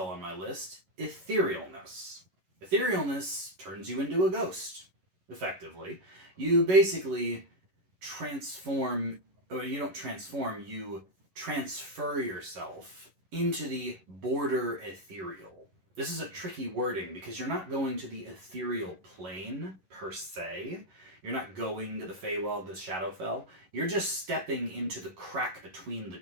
on my list, Etherealness. Etherealness turns you into a ghost, effectively. You basically transform, or you don't transform, you transfer yourself into the border ethereal. This is a tricky wording because you're not going to the ethereal plane per se. You're not going to the Feywild, the Shadowfell. You're just stepping into the crack between the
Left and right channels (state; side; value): late; left; 11 ms